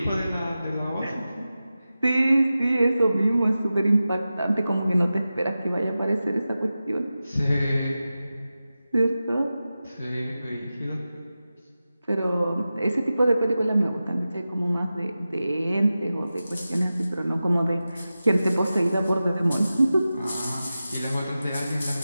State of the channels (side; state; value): both; inverted; correlation -0.94